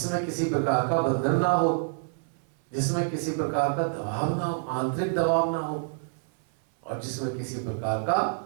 किसी प्रकार का बंधन ना हो, जिसमें किसी प्रकार का दबाव ना हो, आंतरिक दबाव ना हो, और जिसमें किसी प्रकार का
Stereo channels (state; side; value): silent; left; 59 dB below the other